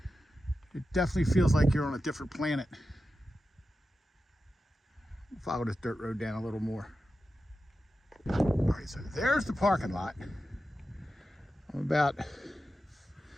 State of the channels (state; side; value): normal; both; correlation 0.92